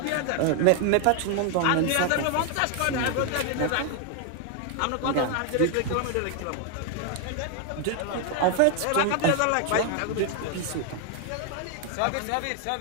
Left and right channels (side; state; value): both; different; correlation 0.00